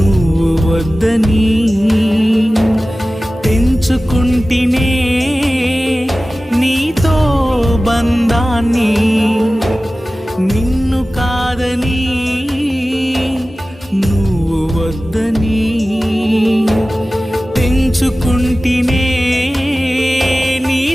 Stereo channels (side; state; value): both; normal; correlation 0.96